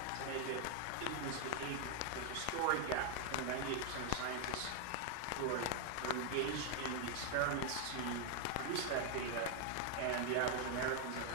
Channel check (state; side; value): different; both; correlation 0.00